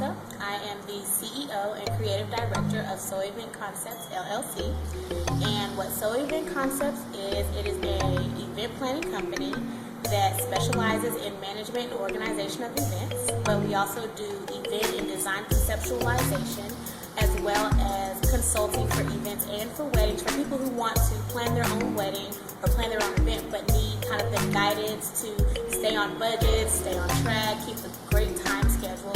I am the CEO and Creative Director of SOA Event Concepts, LLC. And what SOA Event Concepts is, it is an event planning company that specializes in management and organization of events, but we also do event and design conceptualization, as well as consulting for events and for weddings for people who want to plan their own wedding or plan their own event, but need kind of the guidance to stay on budget, stay on track, keep a great time schedule.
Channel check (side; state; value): both; identical; correlation 1.00